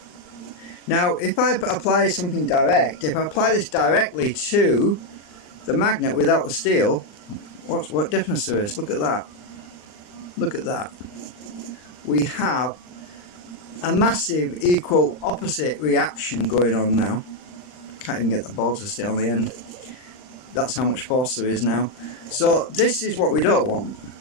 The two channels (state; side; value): late; right; 39 ms